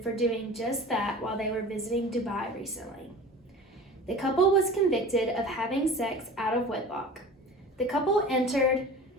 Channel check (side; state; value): both; normal; correlation 0.38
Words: for doing just that while they were visiting Dubai recently. The couple was convicted of having sex out of wedlock. The couple entered